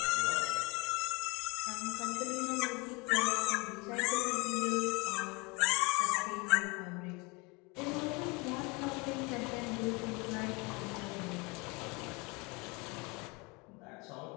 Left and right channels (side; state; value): right; quieter; 27.7 dB